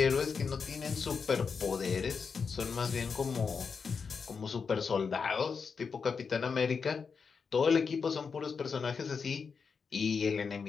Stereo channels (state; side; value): quieter; right; 5.6 dB